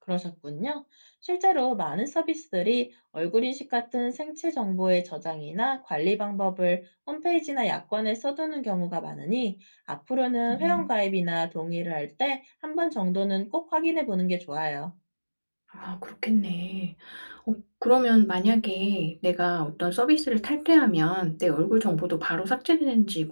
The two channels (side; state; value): both; inverted; correlation -1.00